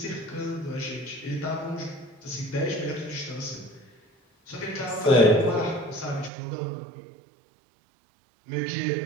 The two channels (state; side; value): drops out; left; at 6.3 s